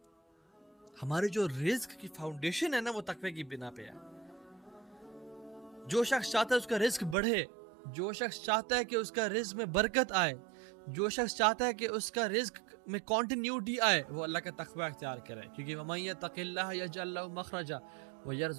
ہمارے جو رزق کی فاؤنڈیشن ہے نا وہ تقوی کی بنا پہ ہے. جو شخص چاہتا ہے اس کا رزق بڑھے, جو شخص چاہتا ہے کہ اس کا رزق میں برکت آئے, جو شخص چاہتا ہے کہ اس کا رزق میں کنٹینیوٹی آئے, وہ اللہ کا تقوی اختیار کرے. کیونکہ وَمَن يَتَّقِ اللَّهَ يَجْعَل لَهُ مَخْرَجًا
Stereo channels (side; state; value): left; drops out; at 7.2 s